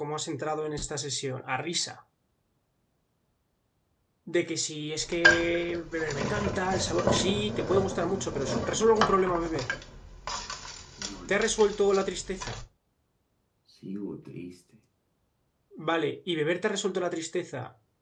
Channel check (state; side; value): identical; both; correlation 1.00